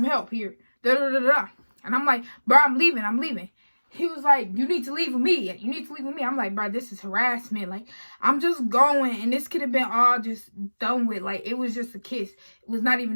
help here. And I'm like, bro, I'm leaving. He was like, you need to leave with me. I'm like, bro, this is harassment. Like, I'm just going, and this could have been all just done with. Like, it was just a kiss. It was not even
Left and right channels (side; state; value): both; inverted; correlation -1.00